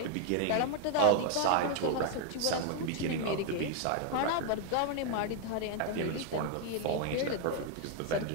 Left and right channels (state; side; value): different; both; correlation 0.00